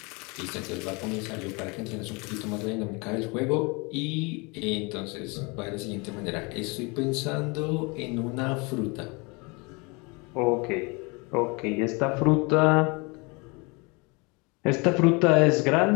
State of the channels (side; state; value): right; quieter; 28.7 dB